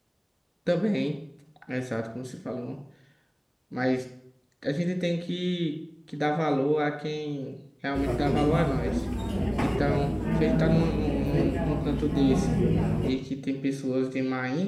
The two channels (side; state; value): both; identical; correlation 1.00